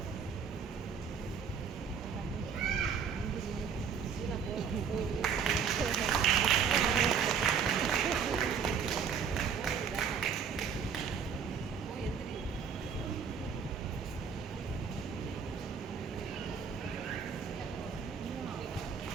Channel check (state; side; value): quieter; left; 6.6 dB